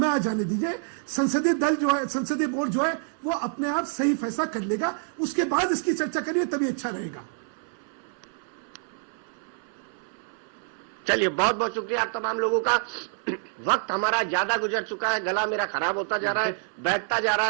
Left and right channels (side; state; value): left; silent; 60 dB below the other